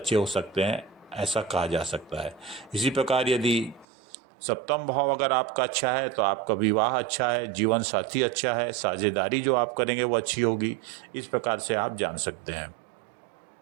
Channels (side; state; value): left; drops out; at 3.9 s